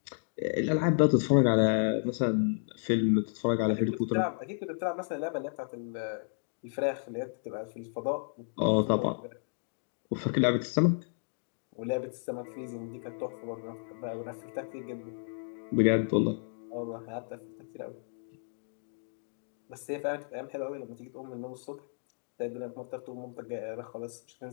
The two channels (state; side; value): silent; right; digital silence